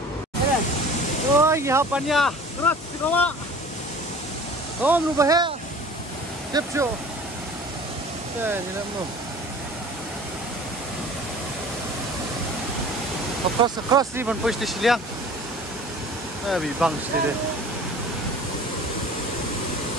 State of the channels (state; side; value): normal; both; correlation 0.44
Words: Oh, ya hapannya. Terus dibawa. Oh, berubah ya. Kepco. Ni nak mau. Across ni ban poi stesen liang. Bi bang sini.